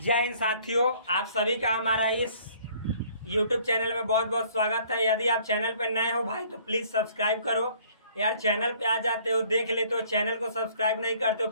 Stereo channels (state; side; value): inverted; both; correlation -0.57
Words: हिंद साथियों, आप सभी का हमारा इस YouTube चैनल में बहुत बहुत स्वागत है। यदि आप चैनल पर नए हो भाई तो प्लीज़ सब्सक्राइब करो। यार चैनल पे आ जाते हो, देख लेते हो, चैनल को सब्सक्राइब नहीं करते हो,